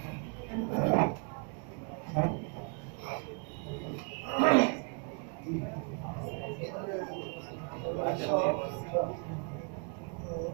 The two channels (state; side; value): quieter; left; 38.4 dB